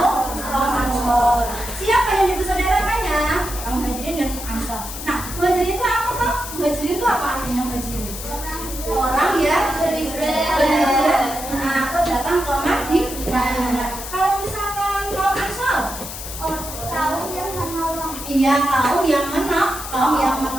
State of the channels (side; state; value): left; noise; hiss, 9 dB below the sound